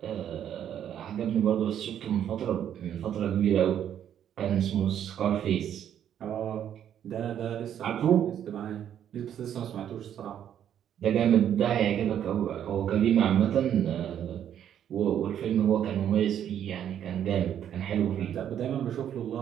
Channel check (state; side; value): quieter; left; 9.9 dB